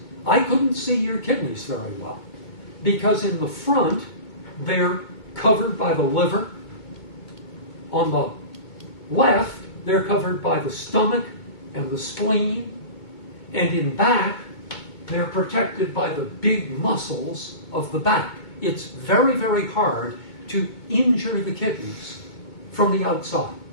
I couldn't see your kidneys very well, because in the front they're covered by the liver. On the left, they're covered by the stomach and the spleen, and in back, they're protected by the big muscles of the back. It's very, very hard to injure the kidneys from the outside.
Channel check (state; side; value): late; right; 2.2 ms